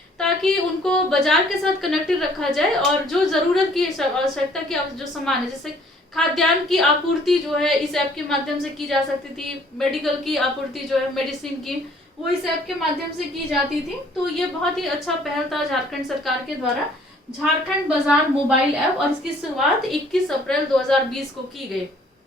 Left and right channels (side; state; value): both; normal; correlation 0.58